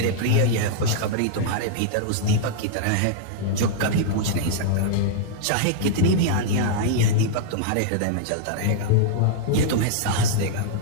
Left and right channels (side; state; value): both; different; correlation -0.01